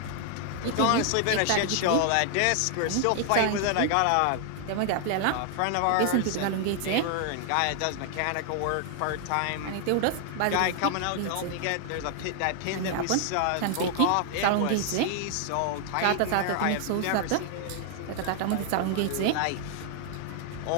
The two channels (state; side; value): different; both; correlation 0.00